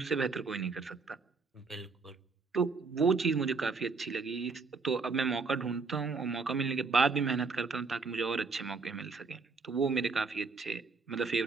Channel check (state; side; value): quieter; left; 4.4 dB